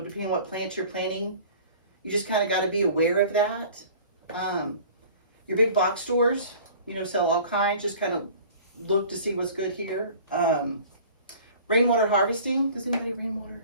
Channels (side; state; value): both; inverted; correlation -0.45